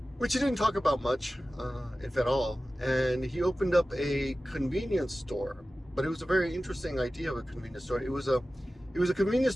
which he didn't talk about much, if at all. And he opened up a convenience store, but it was a very interesting idea of a convenience store. It was a convenience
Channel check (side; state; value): both; normal; correlation 0.95